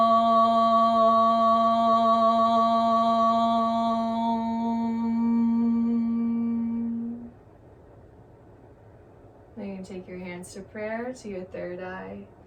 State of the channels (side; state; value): both; identical; correlation 1.00